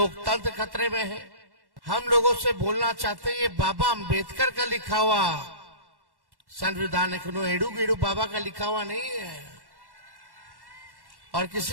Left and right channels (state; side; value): late; left; 1.1 ms